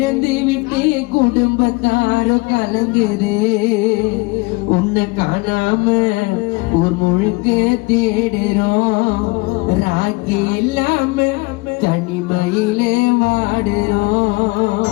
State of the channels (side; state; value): right; quieter; 25.6 dB